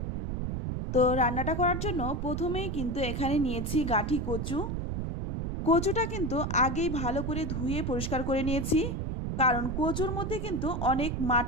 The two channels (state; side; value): noise; right; rumble, 2 dB below the sound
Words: তো রান্নাটা করার জন্য প্রথমেই কিন্তু এখানে নিয়েছি গাঠি কচু। কচুটা কিন্তু আগেই ভালো করে ধুয়ে পরিষ্কার করে নিয়েছি, কারণ কচুর মধ্যে কিন্তু অনেক